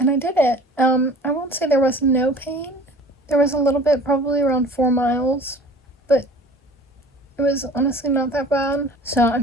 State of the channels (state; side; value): normal; both; correlation 0.45